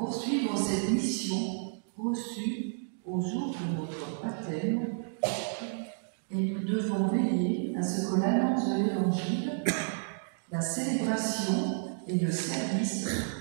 cette mission reçue au jour de notre baptême, et nous devons veiller à ce que l'annonce de l'Évangile, la célébration et le service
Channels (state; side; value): silent; left; digital silence